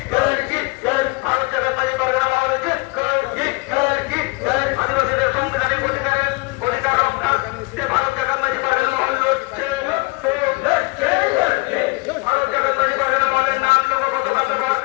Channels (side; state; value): right; quieter; 26.4 dB